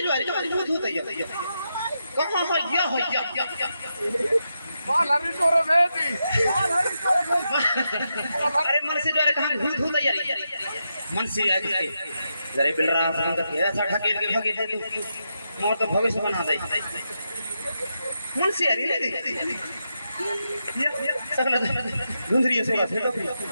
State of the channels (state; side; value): inverted; both; correlation -0.85